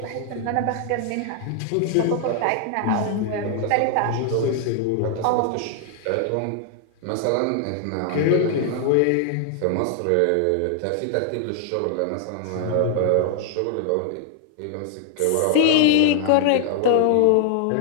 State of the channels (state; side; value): different; both; correlation 0.00